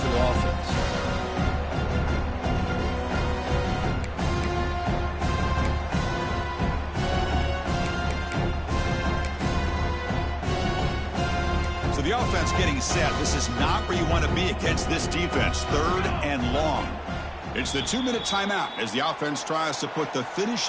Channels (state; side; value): identical; both; correlation 1.00